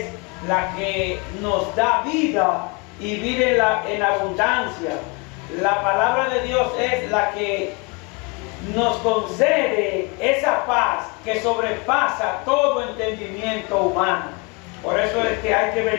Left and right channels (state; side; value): quieter; right; 30.7 dB